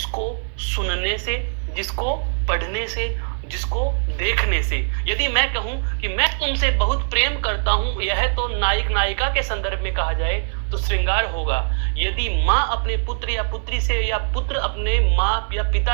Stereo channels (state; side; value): silent; left; digital silence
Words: सुनने से, जिसको पढ़ने से, जिसको देखने से, यदि मैं कहूं कि मैं तुमसे बहुत प्रेम करता हूं, यह तो नायक नायिका के संदर्भ में कहा जाए तो श्रृंगार होगा। यदि माँ अपने पुत्र या पुत्री से, या पुत्र अपने माँ या